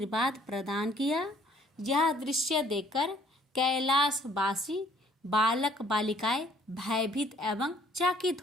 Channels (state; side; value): normal; both; correlation 0.60